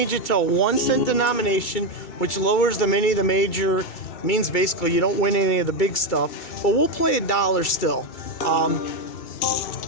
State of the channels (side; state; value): right; late; 2.3 ms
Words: it to a 1-cent denomination, which lowers the mini, the major, means basically you don't win any of the big stuff, but we'll play $1 still.